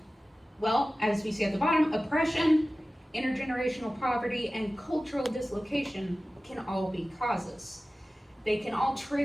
well, as we see at the bottom, oppression, intergenerational poverty, and cultural dislocation can all be causes. They can all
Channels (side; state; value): both; normal; correlation 0.96